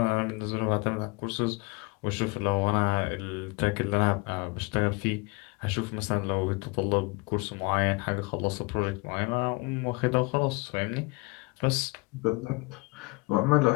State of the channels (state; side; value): quieter; right; 27.5 dB